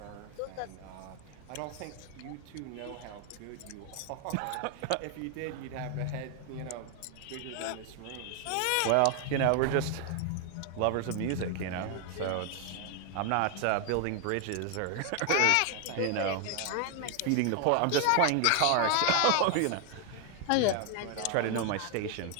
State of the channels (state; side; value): different; both; correlation 0.00